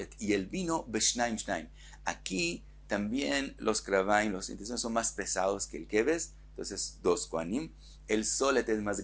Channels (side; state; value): both; identical; correlation 1.00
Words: y el vino, Beshnaim Shnaim. Aquí también los kravaim, los intestinos son más pesados que el keves, entonces 2 kohanim. El solet es más